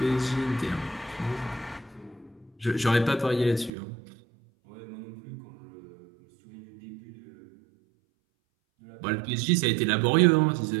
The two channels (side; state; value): left; drops out; at 3.7 s